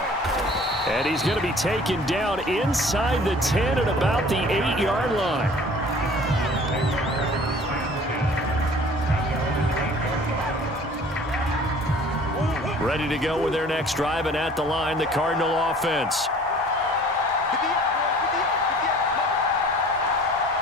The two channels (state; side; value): normal; both; correlation 0.49